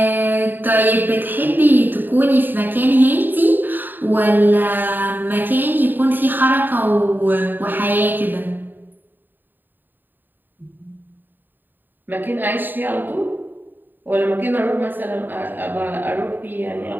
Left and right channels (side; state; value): left; late; 0.092 ms